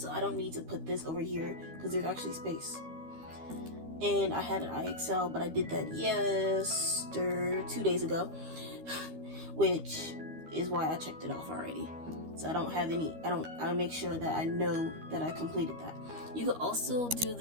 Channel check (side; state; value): left; late; 13 ms